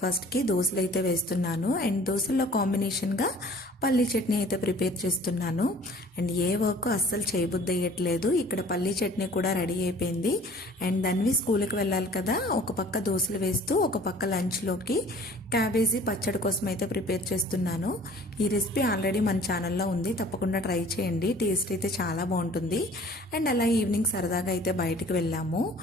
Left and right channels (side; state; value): both; normal; correlation 0.50